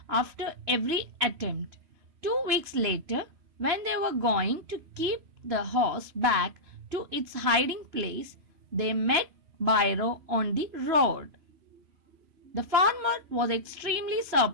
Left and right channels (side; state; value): left; late; 3.0 ms